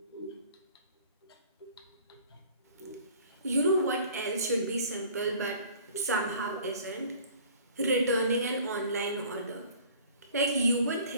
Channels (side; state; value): both; inverted; correlation -0.49